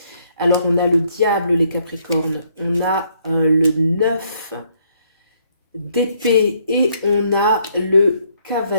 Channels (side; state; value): both; inverted; correlation -0.69